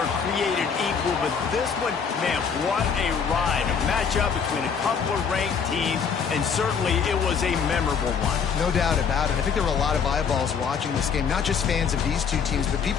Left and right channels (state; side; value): quieter; right; 6.5 dB